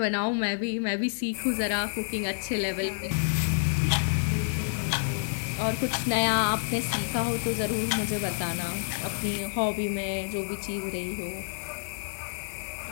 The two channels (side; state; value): right; silent; digital silence